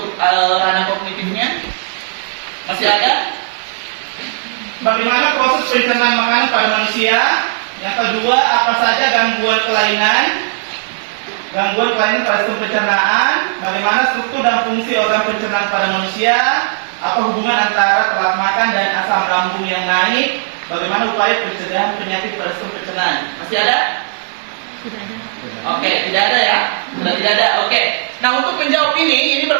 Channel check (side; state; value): left; silent; digital silence